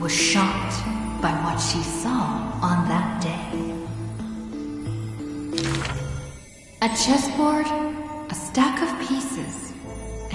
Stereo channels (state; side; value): identical; both; correlation 1.00